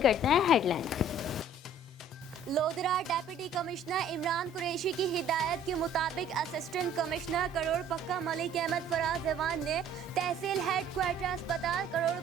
करते हैं headlines. Lodhran deputy commissioner Imran Qureshi की हिदायत के मुताबिक असिस्टेंट कमिश्नर करोड़ पक्का मलिक अहमद फराज एवान ने तहसील हेड क्वार्टर अस्पताल करोड़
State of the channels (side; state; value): both; normal; correlation 0.54